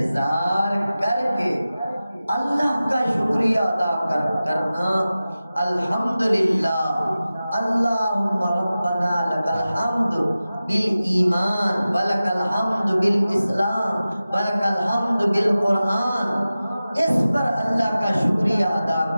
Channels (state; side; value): inverted; both; correlation -0.95